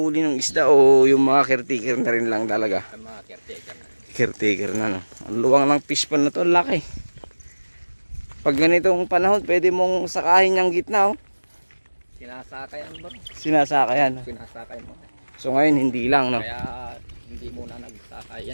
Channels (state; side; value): inverted; both; correlation -1.00